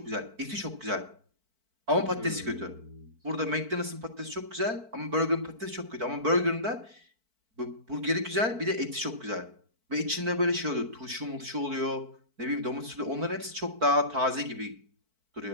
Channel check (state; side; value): late; left; 4.5 ms